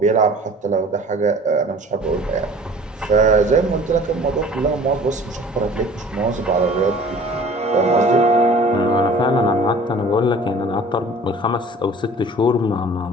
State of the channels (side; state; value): both; normal; correlation 0.47